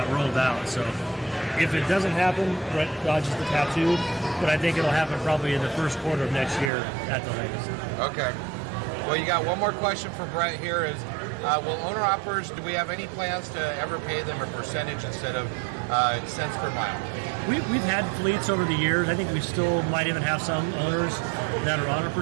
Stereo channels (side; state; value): left; drops out; at 6.7 s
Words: rolled out. So if it doesn't happen, Brett dodges the tattoo, but I think it'll happen probably in the first quarter of next year at the latest. Okay. Well, you got one more question for Brett here is, will owner-operators, do we have any plans to ever pay them a percentage instead of cents per mile? We've had fleets over the years. I think we still might even have some owners that are on a